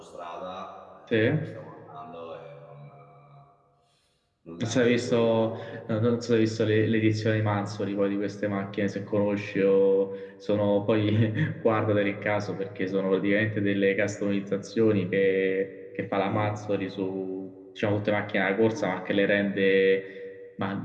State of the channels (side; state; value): both; identical; correlation 1.00